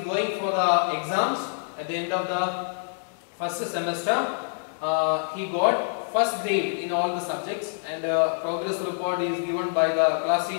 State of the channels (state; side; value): silent; right; digital silence